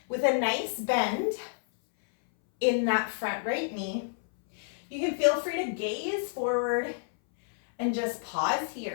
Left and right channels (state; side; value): silent; right; 59 dB below the other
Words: with a nice bend in that front right knee. You can feel free to gaze forward and just pause